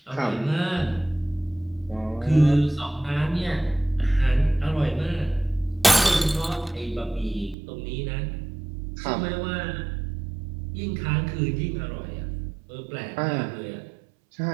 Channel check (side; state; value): left; drops out; at 7.6 s